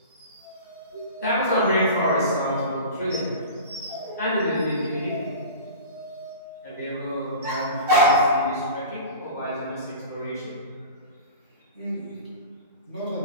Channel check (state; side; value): inverted; both; correlation -0.35